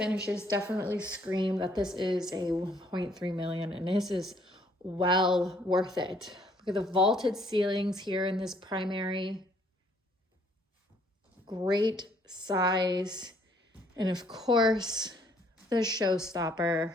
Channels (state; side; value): normal; both; correlation 0.64